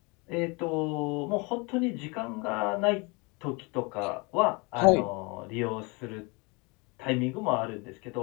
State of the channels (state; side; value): quieter; right; 29.0 dB